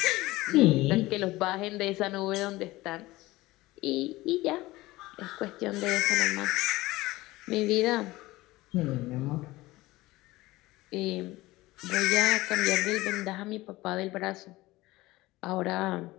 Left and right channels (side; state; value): right; quieter; 19.0 dB